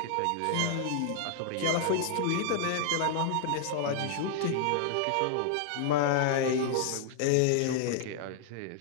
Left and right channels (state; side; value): different; both; correlation -0.01